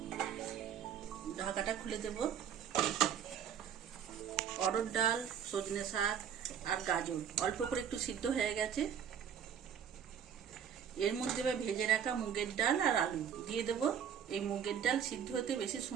ঢাকাটা খুলে দেব। অরহর ডাল, সজনে শাক আর গাজর অল্প করে একটু সিদ্ধ হয়ে গেছে। এর মধ্যে ভেজে রাখা মুগের ডাল আর আলু দিয়ে দেব। এই মুগের ডাল সিদ্ধ হতে বেশি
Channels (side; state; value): left; quieter; 8.4 dB